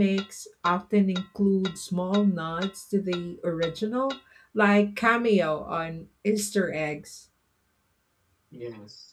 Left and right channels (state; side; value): identical; both; correlation 1.00